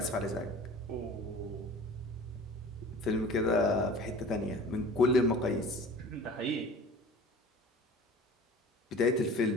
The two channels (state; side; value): normal; both; correlation 0.42